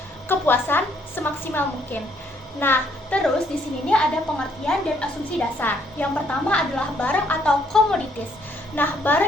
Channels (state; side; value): normal; both; correlation 0.68